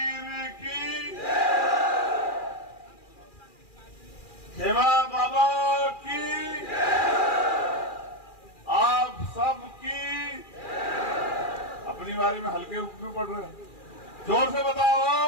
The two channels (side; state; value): right; late; 2.4 ms